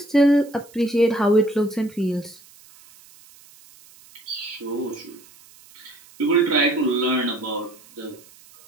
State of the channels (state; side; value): noise; right; hiss, 25 dB below the sound